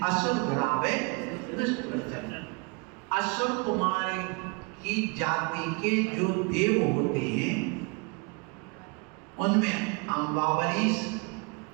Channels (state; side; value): quieter; left; 31.3 dB